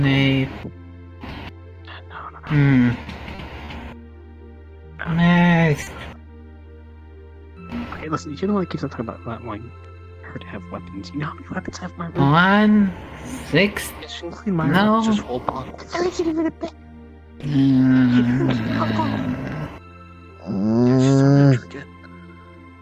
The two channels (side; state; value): both; identical; correlation 1.00